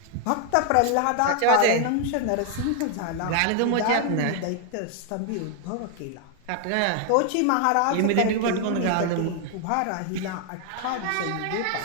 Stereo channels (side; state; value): both; different; correlation 0.00